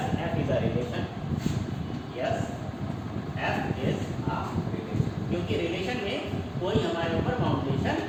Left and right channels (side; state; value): both; identical; correlation 1.00